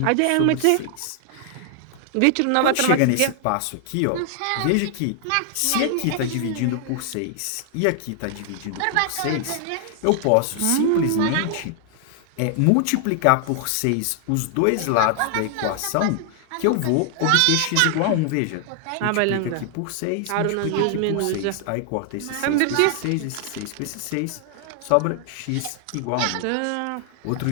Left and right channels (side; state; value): both; different; correlation 0.00